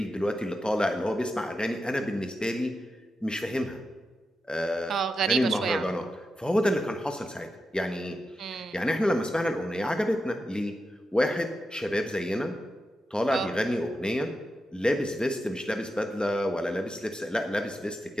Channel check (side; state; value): both; normal; correlation 0.89